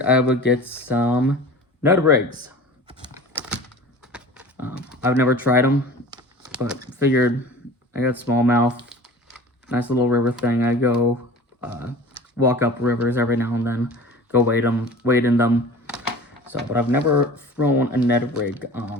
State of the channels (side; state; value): both; normal; correlation 0.40